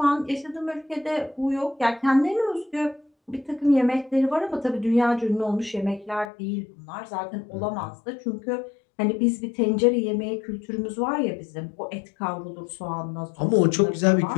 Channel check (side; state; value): right; drops out; at 6.3 s